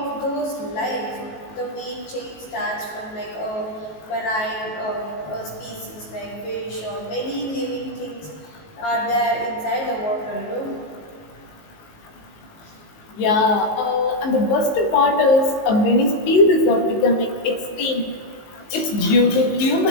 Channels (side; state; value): right; late; 19 ms